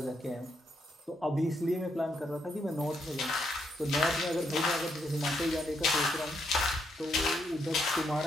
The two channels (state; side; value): normal; both; correlation 0.77